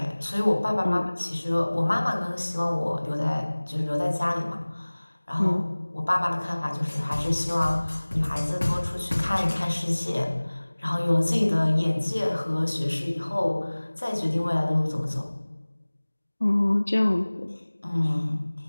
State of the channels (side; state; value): both; inverted; correlation -1.00